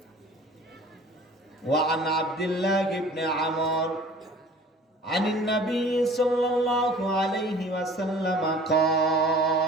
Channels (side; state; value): both; normal; correlation 0.47